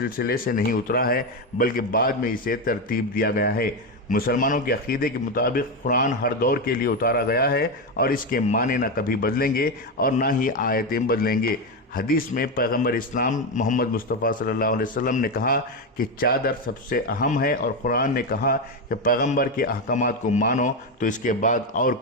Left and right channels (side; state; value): both; normal; correlation 0.11